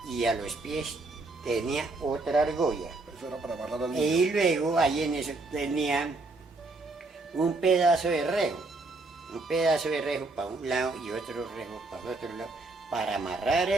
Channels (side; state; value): left; quieter; 3.3 dB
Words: Y a los pies tenía otra argolla. Eso era para amarrar al niño. Y luego ahí en eso tenía un pedazo de rejo. Un pedazo de rejo para un lado y otro rejo para el otro lado. Para amarrar